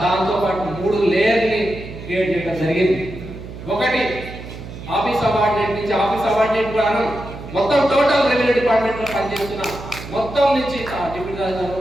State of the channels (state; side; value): noise; right; hum, 12 dB below the sound